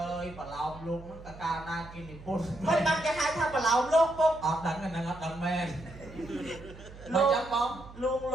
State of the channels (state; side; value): noise; right; hum, 17 dB below the sound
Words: យប្រឡោមលោកហ្នឹងតើកាលណាគេនិពន្ធ មិនបានគេហៅថាប្រឡោមលោកពុក អត់ដឹងហ្នឹងអត់ដឹងមែន លោក ចាំបង លួងល